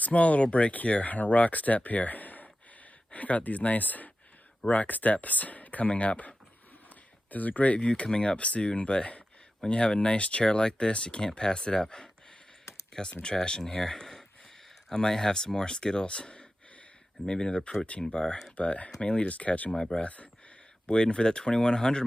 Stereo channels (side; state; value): both; normal; correlation 0.93